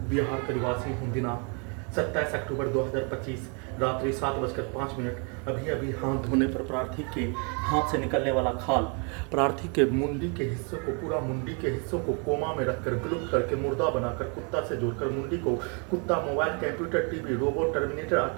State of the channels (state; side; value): quieter; left; 35.7 dB